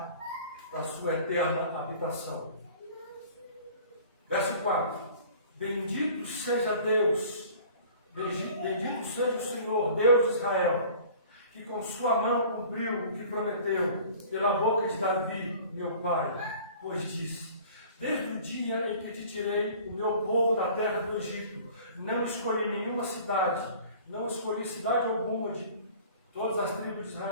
da sua eterna habitação. Verso 4. Bendito seja Deus, bendito seja o Senhor, Deus de Israel, que com sua mão cumpriu o que prometeu pela boca de Davi, meu pai, pois disse: desde o dia em que te tirei o meu povo da terra do Egito, não escolhi nenhuma cidade, não escolhi cidade alguma de todas as tribos de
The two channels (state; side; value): inverted; both; correlation -0.47